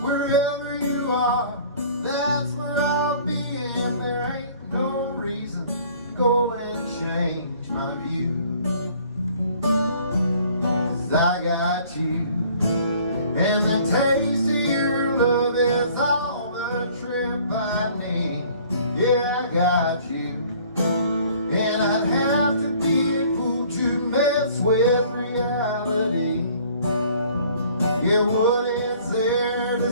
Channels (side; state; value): both; inverted; correlation -0.54